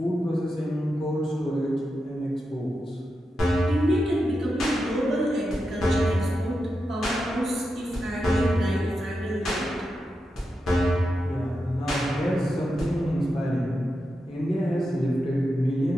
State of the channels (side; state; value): both; normal; correlation 0.88